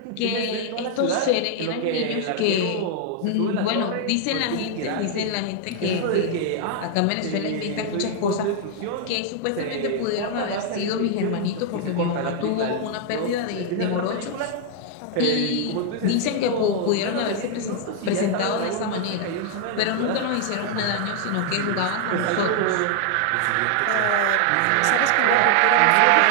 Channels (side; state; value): both; different; correlation 0.00